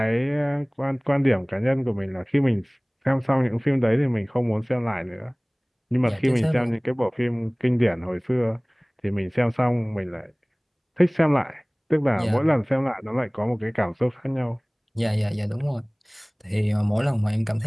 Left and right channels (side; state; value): both; identical; correlation 1.00